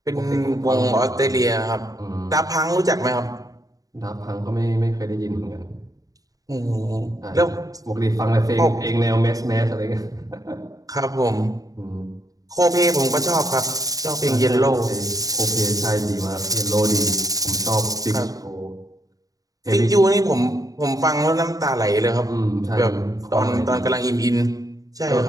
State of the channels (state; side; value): late; left; 0.18 ms